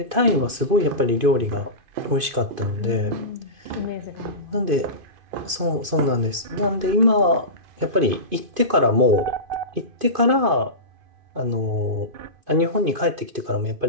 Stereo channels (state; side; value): late; left; 2.5 ms